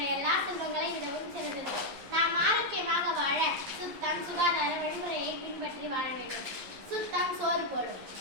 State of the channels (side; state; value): left; late; 11 ms